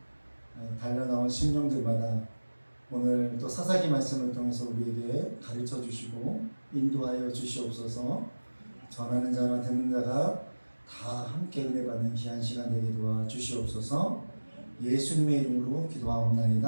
달려나온 심령들마다 오늘 또 사사기 말씀을 통해서 우리에게 가르쳐 주시고 인도하여 주시옵소서. 전하는 자와 듣는 자가 다 함께 은혜 받는 귀한 시간 되게 도와 주시옵소서. 예수님의 이름으로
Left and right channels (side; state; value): both; inverted; correlation -1.00